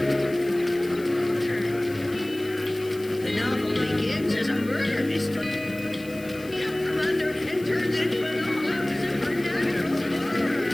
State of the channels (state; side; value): noise; left; hiss, 20 dB below the sound